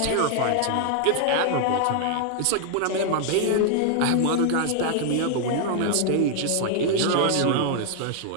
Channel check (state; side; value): different; both; correlation 0.00